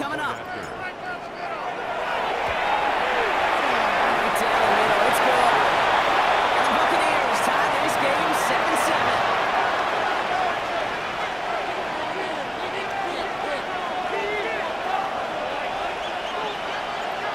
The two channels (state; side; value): identical; both; correlation 1.00